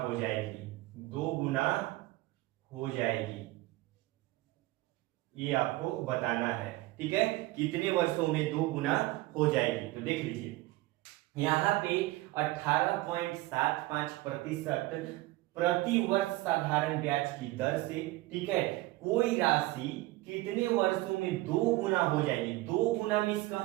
जाएगी, 2 गुना हो जाएगी, ये आपको बताना है। ठीक है, कितने वर्षों में 2 गुना हो जाएगी। तो देख लीजिए यहाँ पे 18.75% प्रति वर्ष साधारण ब्याज की दर से, ठीक है, कोई राशि कितने वर्षों में 2 गुना हो जाएगी। 2 गुना मीन्स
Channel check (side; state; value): left; quieter; 19.1 dB